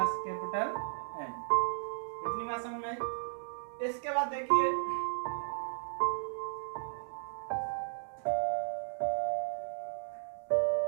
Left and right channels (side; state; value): left; silent; digital silence